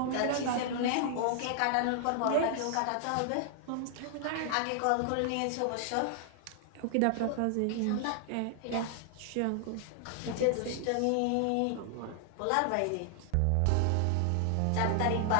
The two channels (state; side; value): different; both; correlation 0.00